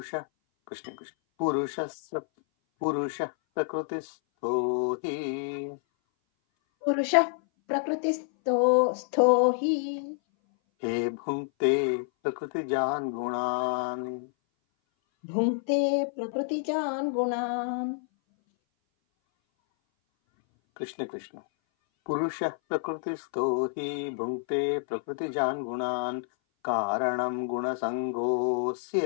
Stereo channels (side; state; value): right; silent; 58 dB below the other